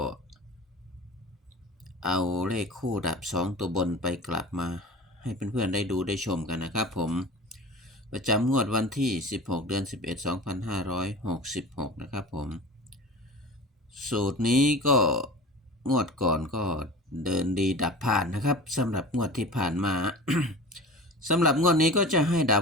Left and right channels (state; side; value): normal; both; correlation 0.36